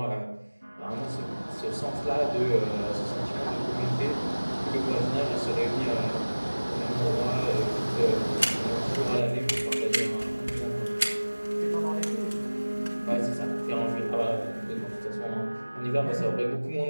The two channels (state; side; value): inverted; both; correlation -1.00